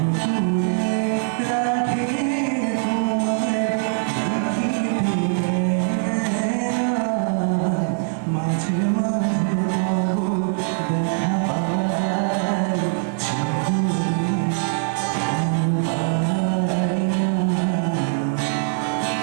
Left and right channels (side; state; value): left; silent; digital silence